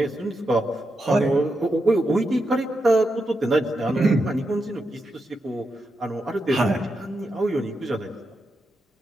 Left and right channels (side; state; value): both; normal; correlation 0.86